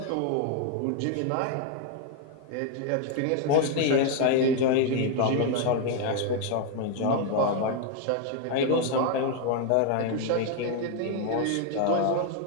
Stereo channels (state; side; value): different; both; correlation 0.00